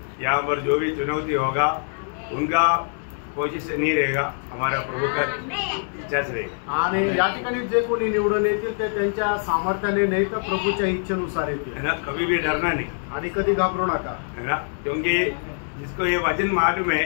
यहाँ पर जो भी चुनौती होगा उनका कोशिश से नहीं रहेगा, हमारा प्रभु का इच्छा से रहेगा। आणि या ठिकाणी जे कोणी निवडून येतील ते त्यांच्या सामर्थ्याने नाही तर प्रभूच्या इच्छेनुसार येतील, है ना। कभी भी डरना नहीं, आणि कधी घाबरू नका, है ना, क्योंकि जिसको ये वचन मालूम है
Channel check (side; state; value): right; silent; digital silence